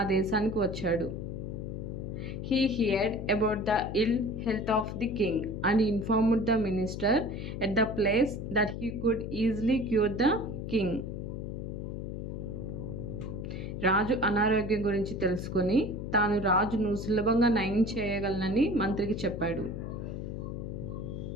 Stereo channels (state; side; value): noise; left; hum, 6 dB below the sound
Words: దేశానికి వచ్చాడు. He heard about the ill health of the king and informed the minister at the place that he could easily cure the king. రాజు అనారోగ్యం గురించి తెలుసుకొని తాను రాజును సులభంగా నయం చేయగలనని మంత్రికి చెప్పాడు.